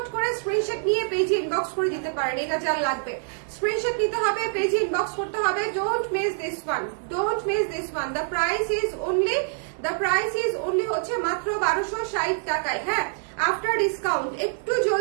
করে স্ক্রিনশট নিয়ে পেজে ইনবক্স করে দিতে পারেন। এটা যার লাগবে স্ক্রিনশট নিতে হবে, পেজে ইনবক্স করতে হবে। Don't miss this one, don't miss this one. The price is only হচ্ছে মাত্র 1260 টাকায়। হ্যাঁ, আফটার ডিসকাউন্ট একটু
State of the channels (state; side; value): silent; left; 57 dB below the other